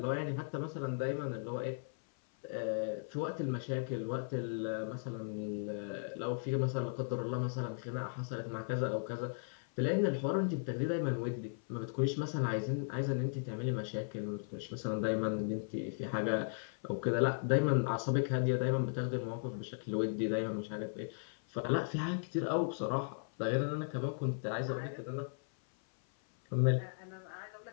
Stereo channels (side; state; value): right; silent; 53 dB below the other